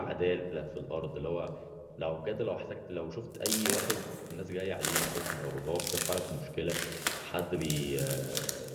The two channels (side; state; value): both; identical; correlation 1.00